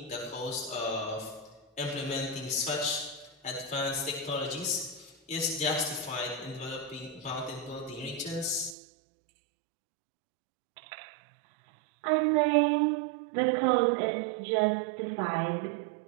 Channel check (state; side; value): drops out; left; at 8.8 s